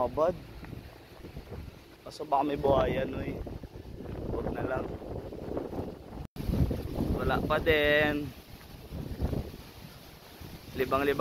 Kaso baka may buhayan eh. Huwag na lang. Wala pa din.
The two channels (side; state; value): both; identical; correlation 1.00